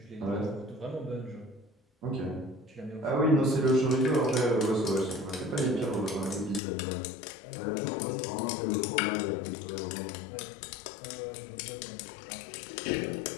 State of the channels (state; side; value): drops out; right; at 6.6 s